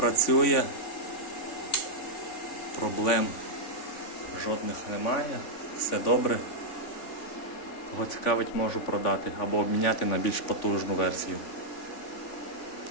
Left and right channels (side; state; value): right; late; 3.5 ms